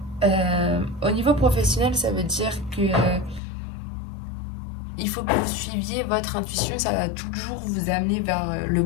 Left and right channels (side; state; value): right; drops out; at 3.4 s